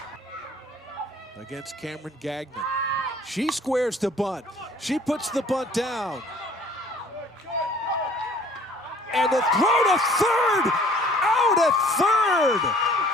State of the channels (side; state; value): both; normal; correlation 0.53